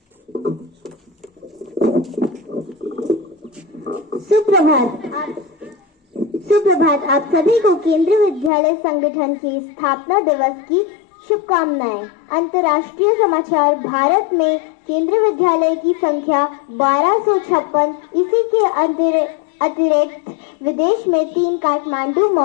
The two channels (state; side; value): drops out; right; at 8.5 s